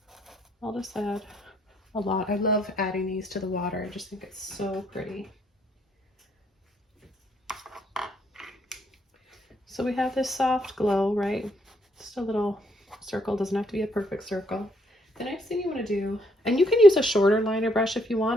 I'll just add a lot. I love adding these to the water. I just think it's so pretty. So we have this soft glow, right? Just a little circle, doesn't have to be a perfect circle. The next thing you want to do, and you can use a shorter liner brush if you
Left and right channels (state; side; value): normal; both; correlation 0.71